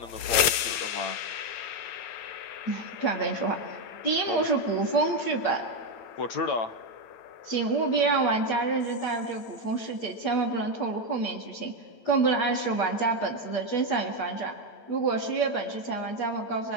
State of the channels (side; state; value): right; late; 9.2 ms